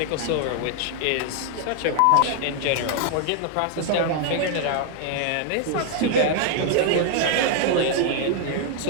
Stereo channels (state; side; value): different; both; correlation 0.00